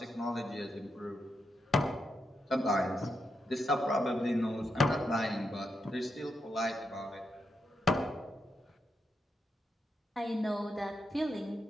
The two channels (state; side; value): normal; both; correlation 0.84